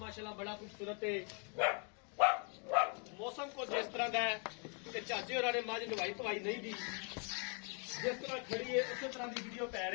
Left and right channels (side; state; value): right; quieter; 38.4 dB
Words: बड़ा खूबसूरत है। मौसम को जिस तरह का है कि चाचे होरां ने मझ नवाई धवाई नहीं दी, जिस तरह खड़ी है उस तरह की वीडियो पै